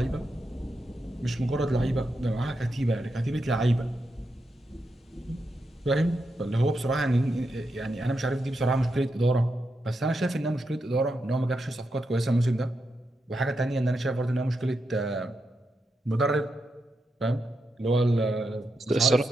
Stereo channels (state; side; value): normal; both; correlation 0.85